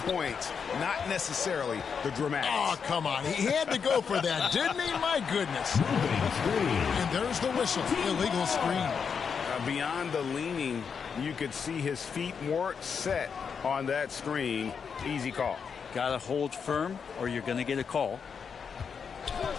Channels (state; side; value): quieter; right; 6.4 dB